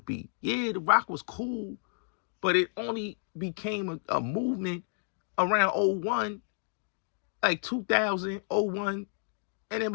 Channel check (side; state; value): right; silent; digital silence